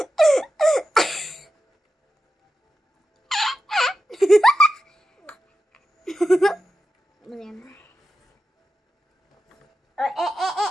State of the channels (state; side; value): normal; both; correlation 0.90